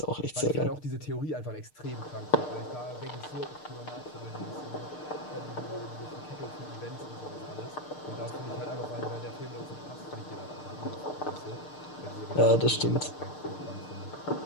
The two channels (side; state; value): right; late; 6.6 ms